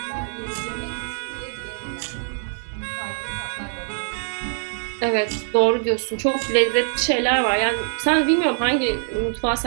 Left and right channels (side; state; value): left; silent; 63 dB below the other